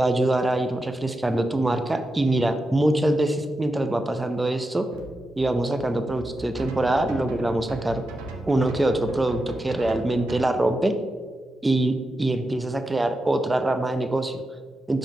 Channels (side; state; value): both; normal; correlation 0.89